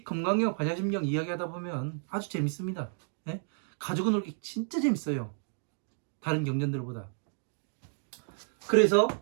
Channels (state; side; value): silent; left; 57 dB below the other